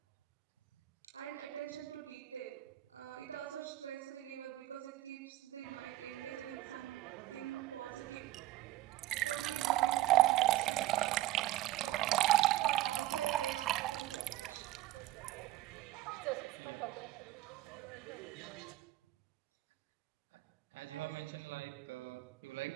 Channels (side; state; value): left; quieter; 15.4 dB